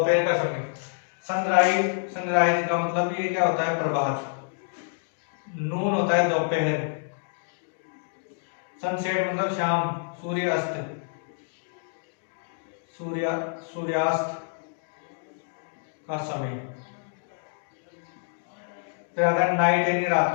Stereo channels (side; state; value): right; silent; digital silence